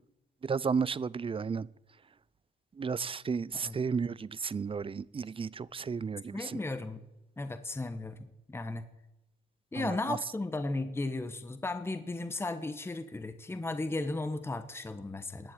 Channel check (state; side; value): normal; both; correlation 0.73